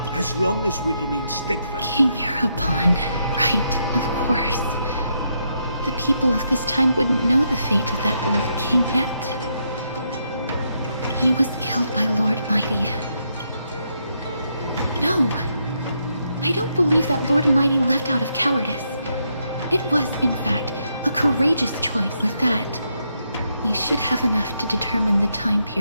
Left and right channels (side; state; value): both; inverted; correlation -0.79